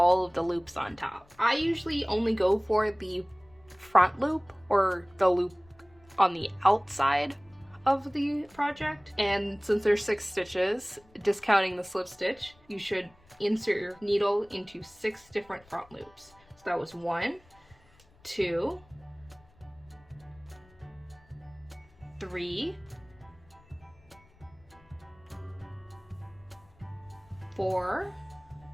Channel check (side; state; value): left; noise; rumble, 29 dB below the sound